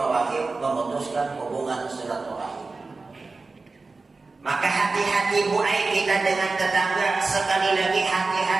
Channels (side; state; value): left; quieter; 3.8 dB